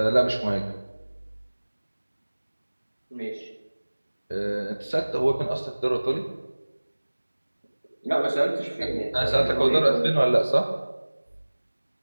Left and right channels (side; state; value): both; inverted; correlation -1.00